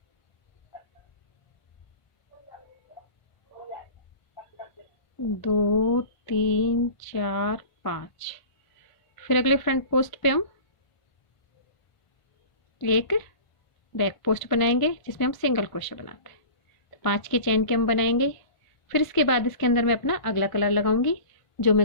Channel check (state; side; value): late; right; 1.5 ms